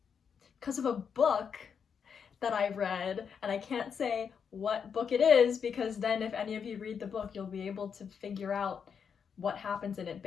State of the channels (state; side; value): quieter; right; 6.8 dB